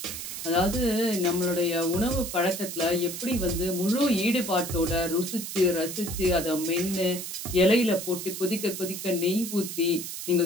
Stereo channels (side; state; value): right; noise; hiss, 7 dB below the sound